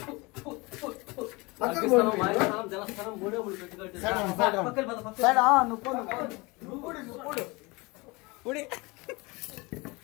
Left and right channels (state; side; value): quieter; right; 25.3 dB